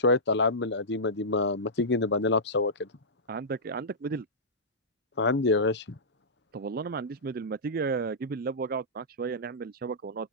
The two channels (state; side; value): normal; both; correlation -0.15